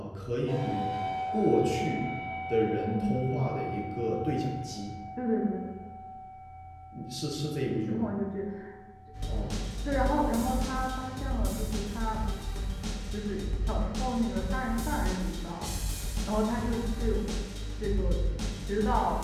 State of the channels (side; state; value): both; identical; correlation 1.00